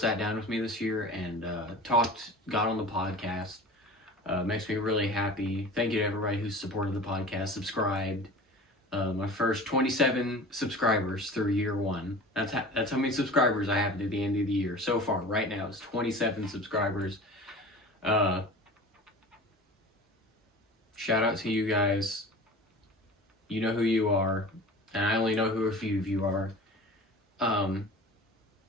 down with me this year and got on the podcast. Makes me really happy. Thank you to everybody who supported the podcast, subscribed. My first 27 subscribers through year one. That's how many subscribers I have at the end of the year. So far, right now, it's 27 subscribers. Shout out to you guys. You know who you are. And I only know who a few of you are.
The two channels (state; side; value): normal; both; correlation 0.38